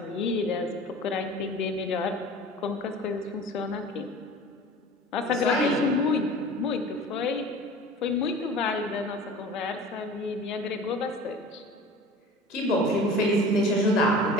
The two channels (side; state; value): both; normal; correlation 0.40